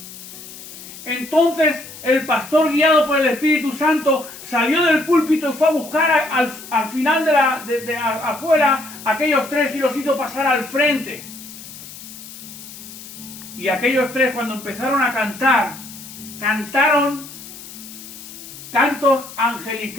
Entonces el pastor, guiado por el Espíritu Santo, salió del púlpito y fue a buscar al final de afuera a aquellos tres y los hizo pasar al frente. Y aquellos tres, cuando empezaron a cantar, cantaron cantos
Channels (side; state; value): left; noise; hiss, 15 dB below the sound